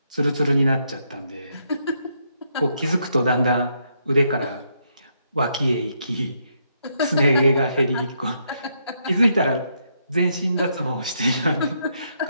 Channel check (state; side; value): inverted; both; correlation -0.76